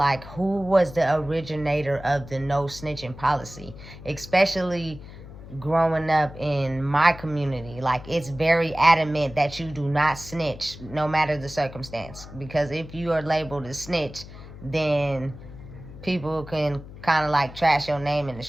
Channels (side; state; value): left; noise; hum, 15 dB below the sound